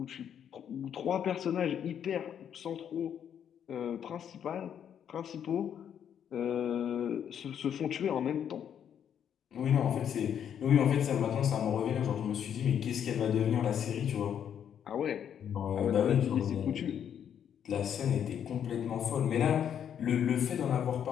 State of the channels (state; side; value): quieter; right; 8.9 dB